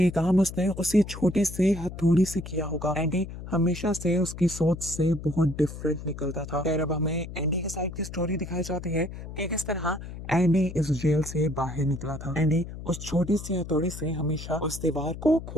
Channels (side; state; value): left; noise; hum, 11 dB below the sound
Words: काम उसने उसी छोटे से हथौड़ी से किया होगा। एंडी हमेशा से उसकी सोच से बहुत डिफरेंट निकलता था। खैर अब हमें एंडी के साइड की स्टोरी दिखाई जाती है कि किस तरह एंडी इस जेल से बाहर निकला था। एंडी उस छोटी सी हथौड़ी से हमेशा उस दीवार को